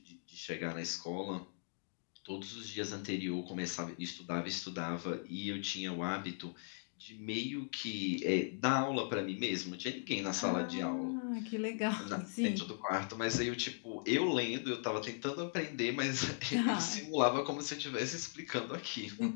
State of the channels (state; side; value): silent; right; digital silence